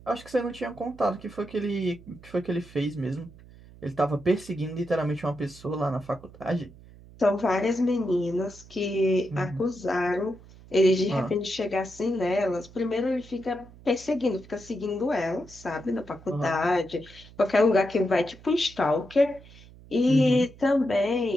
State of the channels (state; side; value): noise; right; hum, 21 dB below the sound